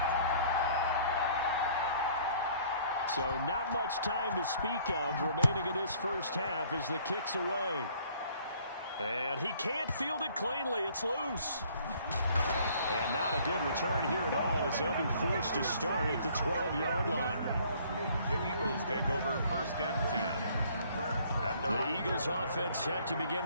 So not much time to speak of remaining in this first half as the kick's away. And he can't field it cleanly. It's loose. And not a good return here at all as they'll be forced to start at the 12-yard line. The Eagles take over 1st and 10. The Eagles offense set to begin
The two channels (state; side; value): inverted; both; correlation -0.58